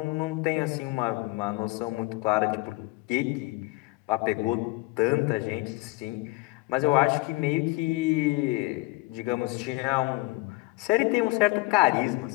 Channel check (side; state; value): right; quieter; 23.1 dB